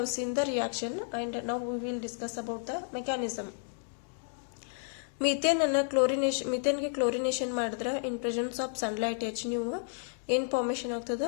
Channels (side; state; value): right; silent; digital silence